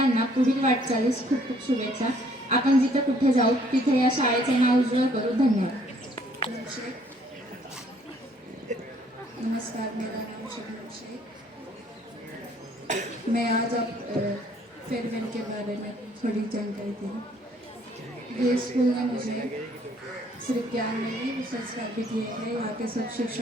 पुढील वाटचालीस खूप खूप शुभेच्छा। आपण जिथे कुठे जाऊ तिथे या शाळेचे नाव उज्ज्वल करू। धन्यवाद। नमस्कार, मेरा नाम शबनम शेख। मैं आज फेयरवेल के बारे में थोड़ी जानकारी दूँ। ये स्कूल ने मुझे सिर्फ ज्ञान नहीं भी संस्कार भी दिए हैं। यहाँ के सब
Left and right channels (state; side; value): normal; both; correlation 0.62